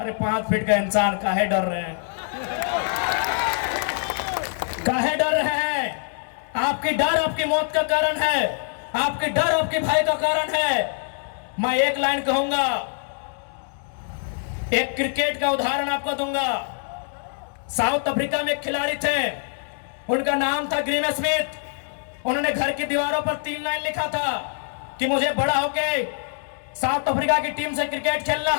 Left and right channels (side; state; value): right; silent; 61 dB below the other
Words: 5 फीट का इंसान काहे डर रहे हैं? काहे डर रहे हैं? आपकी डर आपकी मौत का कारण है, आपकी डर आपके भाई का कारण है। मैं एक लाइन कहूंगा, एक क्रिकेट का उदाहरण आपको दूंगा। साउथ अफ्रीका में एक खिलाड़ी थे, उनका नाम था ग्रीम स्मिथ। उन्होंने घर की दीवारों पर 3 लाइन लिखा था कि मुझे बड़ा होके साउथ अफ्रीका की टीम से क्रिकेट खेलना